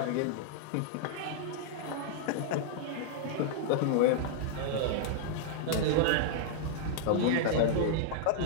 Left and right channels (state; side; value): different; both; correlation -0.01